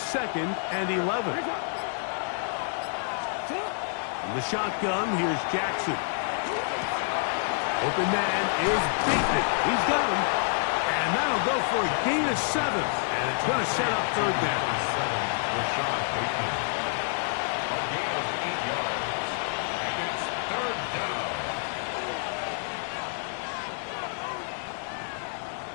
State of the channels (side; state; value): right; silent; 59 dB below the other